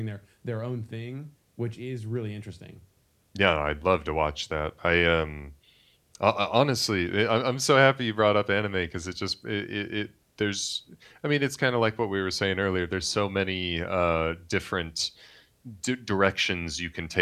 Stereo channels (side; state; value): both; identical; correlation 1.00